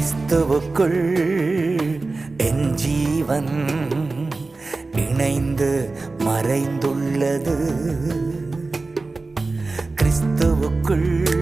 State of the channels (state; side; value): quieter; left; 3.6 dB